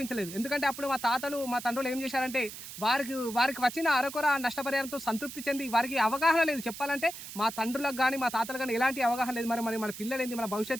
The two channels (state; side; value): noise; right; hiss, 11 dB below the sound